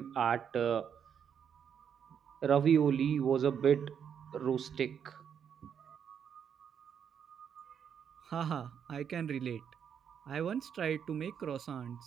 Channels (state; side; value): quieter; left; 7.9 dB